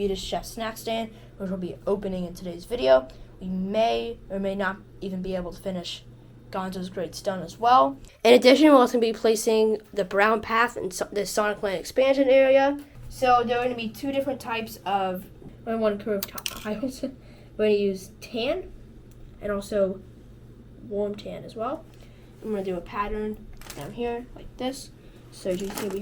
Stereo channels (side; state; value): both; identical; correlation 1.00